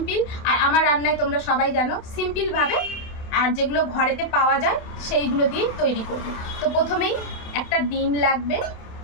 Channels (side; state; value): right; late; 28 ms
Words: আর আমার রান্নায় তোমরা সবাই জানো সিম্পলভাবে, আর যেগুলো ঘরেতে পাওয়া যায় সেইগুলো দিয়েই তৈরি করবে। তো প্রথমেই একটা ডিম লাগবে,